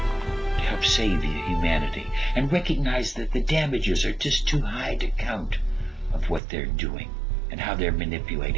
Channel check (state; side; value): drops out; left; at 6.4 s